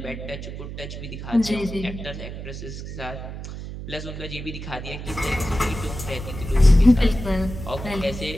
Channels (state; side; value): noise; right; hum, 9 dB below the sound